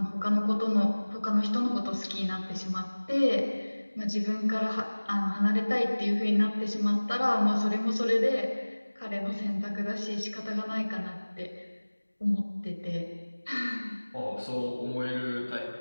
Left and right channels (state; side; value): inverted; both; correlation -1.00